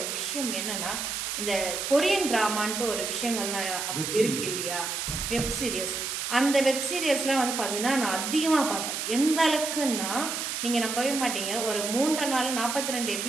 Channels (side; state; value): right; noise; hiss, 3 dB below the sound